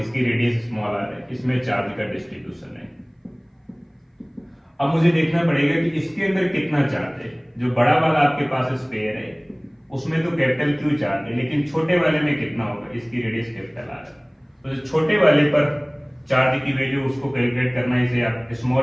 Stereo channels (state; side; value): identical; both; correlation 1.00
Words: रेडियस स्मॉल आर है, इसमें चार्ज का डिस्ट्रीब्यूशन है। अब मुझे देखना पड़ेगा कि इसके अंदर कितना चार्ज है। जो बड़ा वाला आपके पास स्फीयर है उसमें तो कैपिटल क्यू चार्ज है, लेकिन छोटे वाले में कितना होगा, इसकी रेडियस कैपिटल आर है। तो जो छोटे वाले पर चार्ज की वैल्यू उसको कैलकुलेट करना है, इसे आप